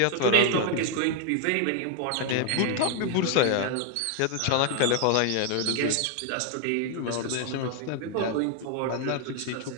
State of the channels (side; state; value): both; different; correlation 0.00